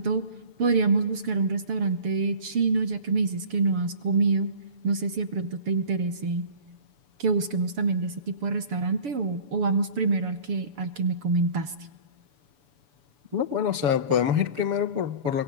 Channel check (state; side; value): late; left; 7.0 ms